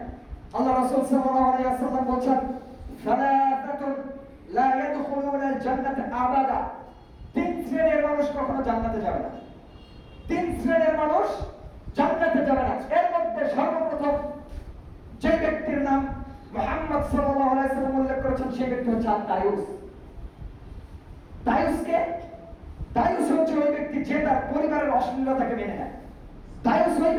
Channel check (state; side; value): identical; both; correlation 1.00